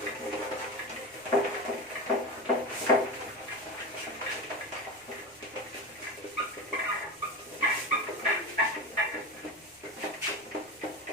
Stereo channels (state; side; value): normal; both; correlation 0.23